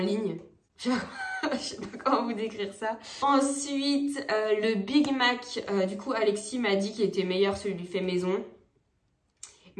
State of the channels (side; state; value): both; identical; correlation 1.00